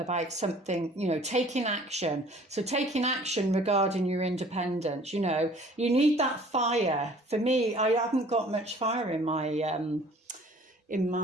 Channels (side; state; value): both; normal; correlation 0.52